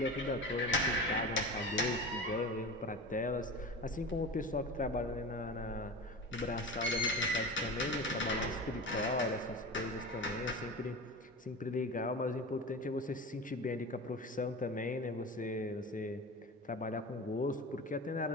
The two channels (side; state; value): both; normal; correlation 0.30